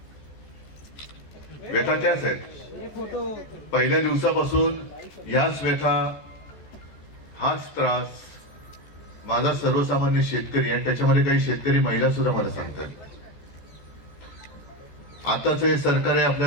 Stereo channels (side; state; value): right; late; 14 ms